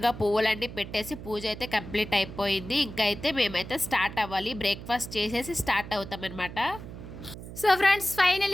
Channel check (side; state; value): right; noise; hum, 12 dB below the sound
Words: పువ్వులన్నీ పెట్టేసి పూజ అయితే కంప్లీట్ అయిపోయింది. ఇంకా అయితే మేమైతే స్టార్ట్ అవ్వాలి. బ్రేక్ఫాస్ట్ చేసేసి స్టార్ట్ అవుతాం అనమాట. సో ఫ్రెండ్స్,